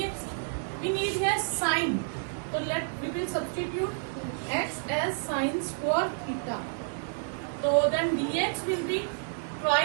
We need here sine. So we will substitute x as sine square theta. So then dx will be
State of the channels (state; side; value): silent; left; digital silence